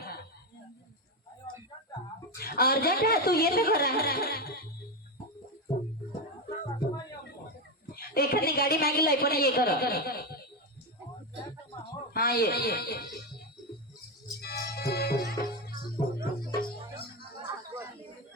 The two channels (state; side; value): normal; both; correlation 0.11